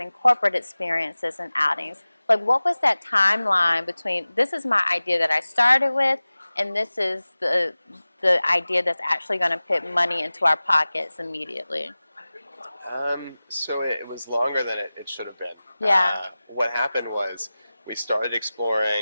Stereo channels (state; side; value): inverted; both; correlation -0.97